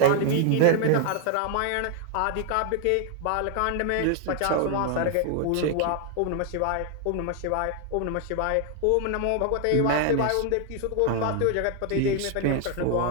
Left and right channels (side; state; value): both; different; correlation 0.00